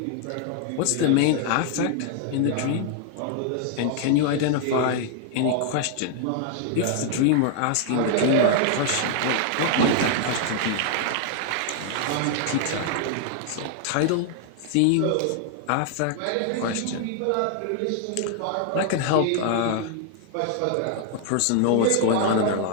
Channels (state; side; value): different; both; correlation 0.00